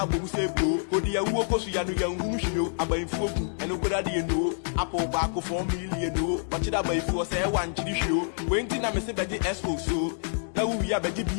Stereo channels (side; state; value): right; silent; digital silence